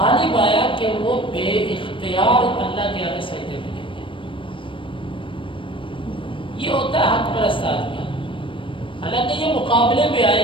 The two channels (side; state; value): right; late; 0.25 ms